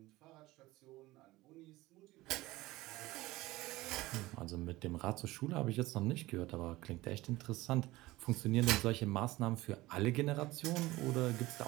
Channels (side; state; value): left; quieter; 18.9 dB